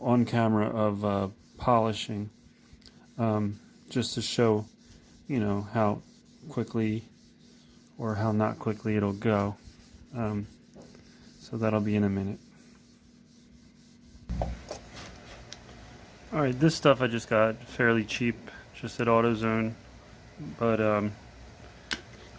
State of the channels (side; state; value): both; identical; correlation 1.00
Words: camera of polishing, just to show, you know, how quickly or how not quickly it'll go. So that'll be in a minute. Alright, this stuff I just got fairly cheap, just at AutoZone. But I'm